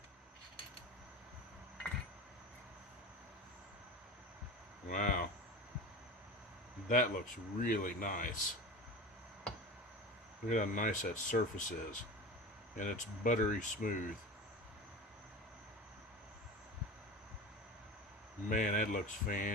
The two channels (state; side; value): normal; both; correlation 0.31